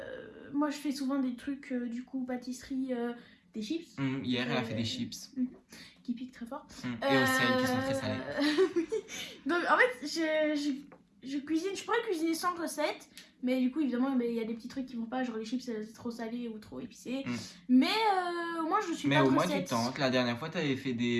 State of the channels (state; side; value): identical; both; correlation 1.00